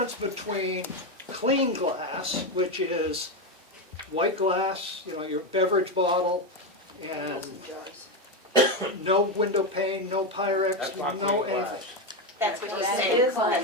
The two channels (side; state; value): both; normal; correlation 0.11